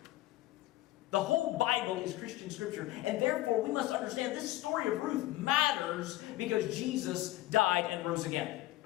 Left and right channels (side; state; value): right; quieter; 16.5 dB